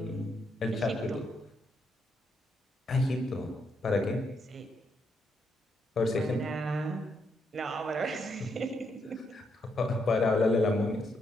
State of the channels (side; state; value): both; normal; correlation 0.78